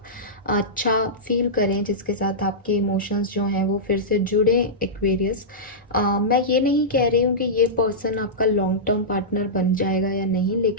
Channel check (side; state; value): both; normal; correlation -0.14